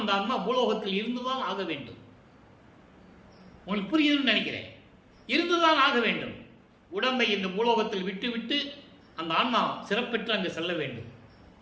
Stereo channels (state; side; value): identical; both; correlation 1.00